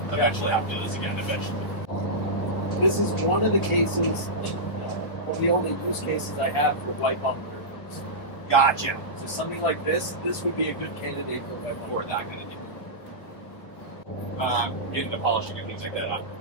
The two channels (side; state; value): right; late; 1.5 ms